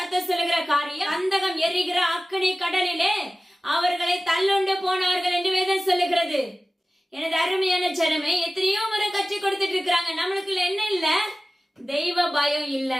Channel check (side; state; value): both; normal; correlation 0.97